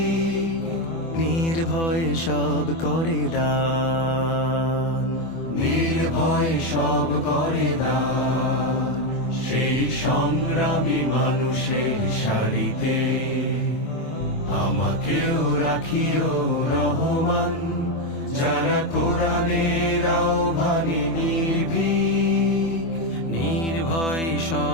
নির্ভয়ে সব করে দান, নির্ভয় সব করে দান। সেই সংগ্রামী মানুষের সারিতে আমাকেও রাখিও রহমান। যারা কোরআনের আহ্বানে নির্ভয়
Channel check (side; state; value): right; late; 24 ms